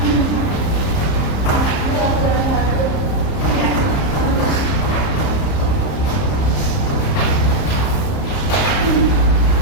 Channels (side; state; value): right; late; 30 ms